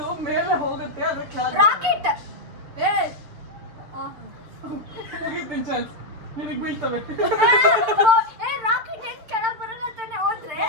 ಮೇಲೆ ಹೋಗುತ್ತೆ ಆದ್ರೆ ಕೆಳಗ್ ರಾಕೆಟ್. ಮುಗಿತೀನಿ ಚಾನ್ಸ್. ನಿನಗ್ ಬೀಳ್ತವೆ. ರಾಕೆಟ್ ಹೆಂಗ್ ಕೆಳಗ್ ಬರಲ್ಲ ತಾನೆ ಹೋದ್ರೆ?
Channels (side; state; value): left; late; 7.0 ms